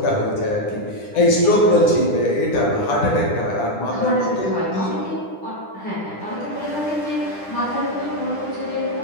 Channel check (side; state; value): right; late; 10 ms